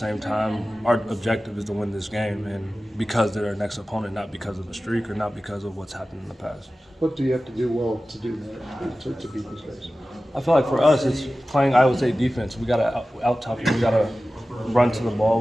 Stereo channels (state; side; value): normal; both; correlation 0.96